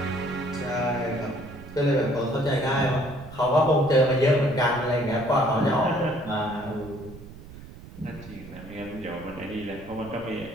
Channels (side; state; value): right; noise; rumble, 16 dB below the sound